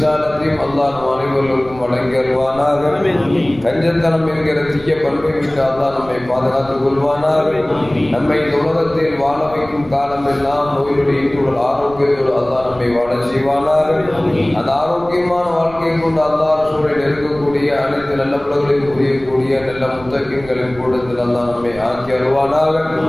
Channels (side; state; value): right; noise; rumble, 19 dB below the sound